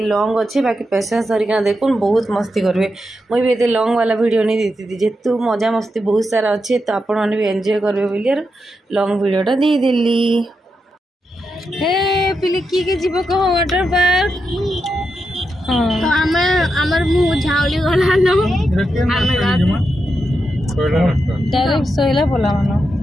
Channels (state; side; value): normal; both; correlation 0.86